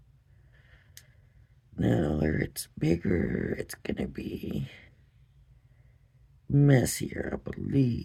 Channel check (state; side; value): identical; both; correlation 1.00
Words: Now where it's bigger, it's going to be messier, I